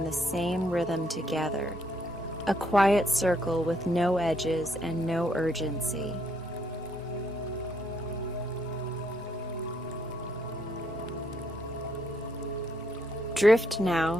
the same rhythm together, a quiet circle with no edges and no urgency. Drift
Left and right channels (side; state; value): right; noise; rumble, 26 dB below the sound